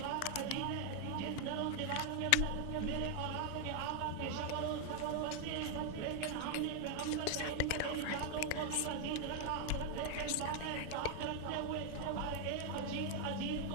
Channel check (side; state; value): both; different; correlation 0.00